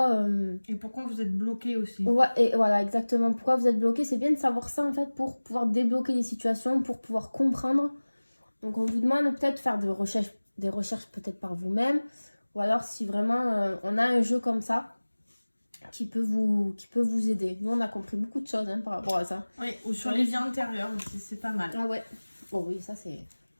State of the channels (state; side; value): inverted; both; correlation -1.00